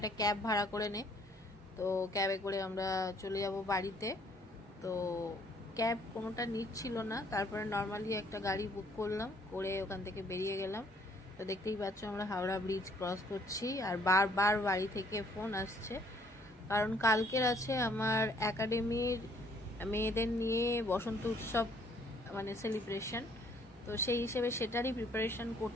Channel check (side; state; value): both; normal; correlation 0.63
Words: ক্যাব ভাড়া করে নে, তো ক্যাবে করে আমরা চলে যাব বাড়িতে। তো ক্যাব কোনোটা নিচ্ছিল না, তারপরে নর্মালি একটা গাড়ি বুক করলাম, করে ওখান থেকে বেরিয়ে গেলাম। তো দেখতেই পাচ্ছ আমরা হাওড়া ব্রিজ ক্রস করছি, আর বারবার বাড়ি থেকে ফোন আসছে, কারণ কালকের আছে আমার একাডেমির মেয়েদের নিয়ে বসন্ত উৎসব মানে সেলিব্রেশন, তো সেই হিসেবে সেটারই প্রিপারেশন